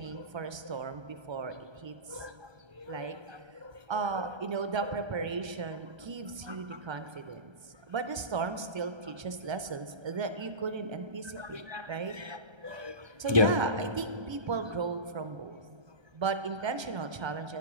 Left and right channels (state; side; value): late; left; 1.3 ms